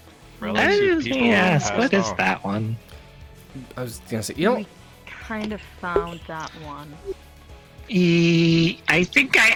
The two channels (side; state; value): both; identical; correlation 1.00